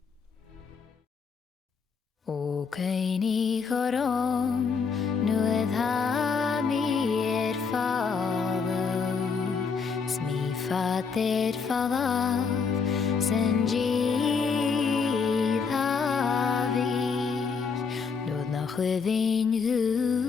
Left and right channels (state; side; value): quieter; right; 5.5 dB